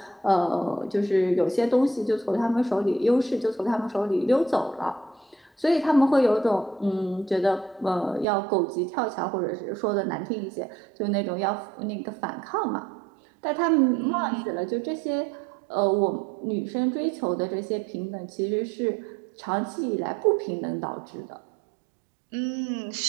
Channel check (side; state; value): left; drops out; at 8.2 s